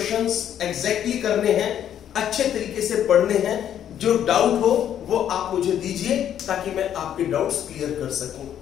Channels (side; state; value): right; quieter; 10.0 dB